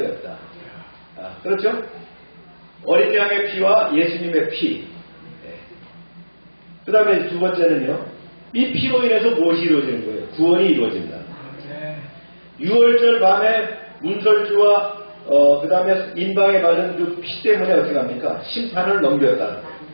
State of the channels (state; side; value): inverted; both; correlation -1.00